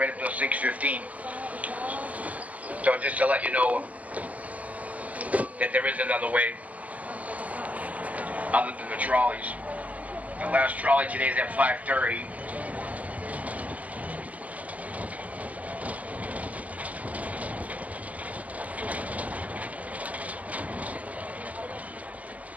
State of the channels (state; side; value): late; left; 0.074 ms